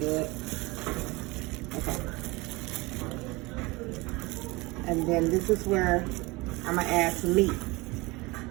Okay. And then this is where I'm gonna add some meat.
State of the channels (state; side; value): quieter; left; 23.6 dB